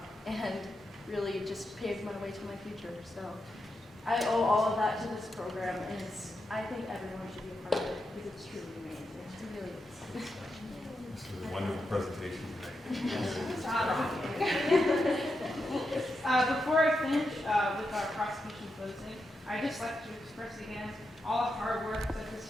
and really just paved my way to my future. So I owe all of that to this program, and I think everyone should be a part of it because it's truly amazing. It really is. This is a wonderful presentation tonight. Before I finish with our prosecution closing, I'd just like to express again all the hard work that this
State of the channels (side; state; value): both; normal; correlation 0.86